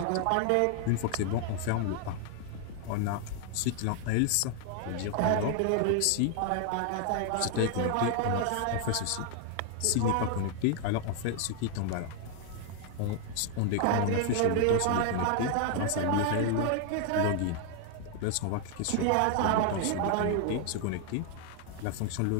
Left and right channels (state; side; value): different; both; correlation 0.00